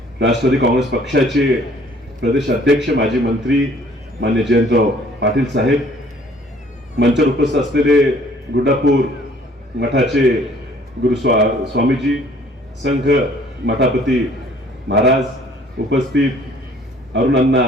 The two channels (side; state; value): both; normal; correlation 0.57